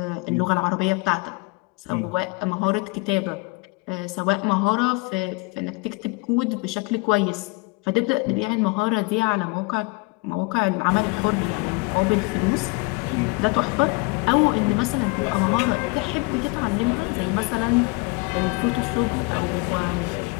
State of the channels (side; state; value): right; quieter; 27.2 dB